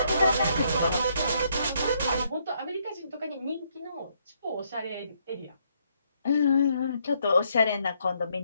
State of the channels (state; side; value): inverted; both; correlation -0.72